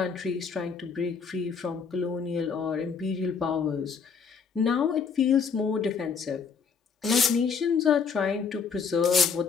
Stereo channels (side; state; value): right; quieter; 5.9 dB